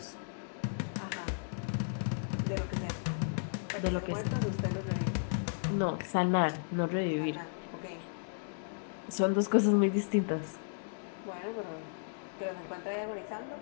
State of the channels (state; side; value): silent; right; digital silence